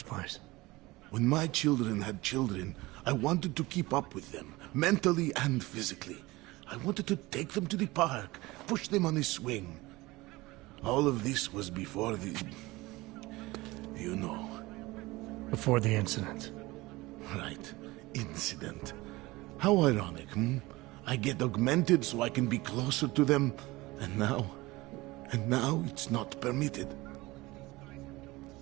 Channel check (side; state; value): left; quieter; 20.7 dB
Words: place? When my children had children, I wanted to keep up with them, mentally and physically. I wanted to take them to the park, push them on a swing. All of this was before the... you know. Before the incident. Right. Incident. How ironic, hmm? I get augmented so I can be closer to them, and now it's not permitted.